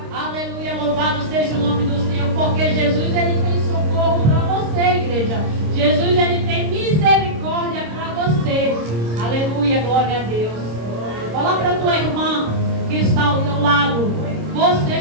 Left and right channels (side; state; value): left; late; 26 ms